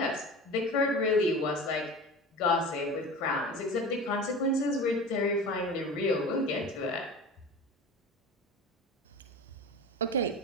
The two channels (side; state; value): both; normal; correlation 0.33